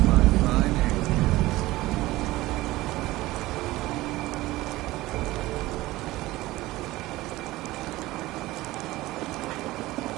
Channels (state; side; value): quieter; left; 18.2 dB